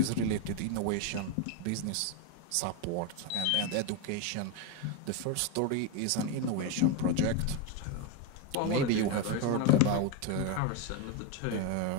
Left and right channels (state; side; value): different; both; correlation 0.02